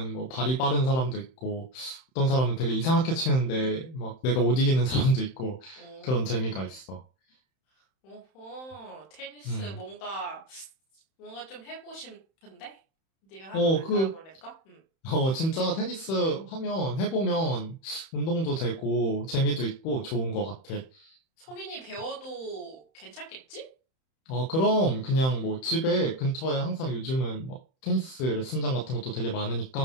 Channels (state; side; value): late; right; 31 ms